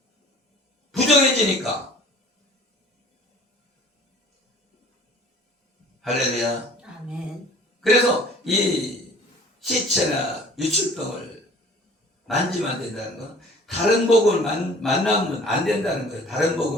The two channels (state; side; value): normal; both; correlation 0.49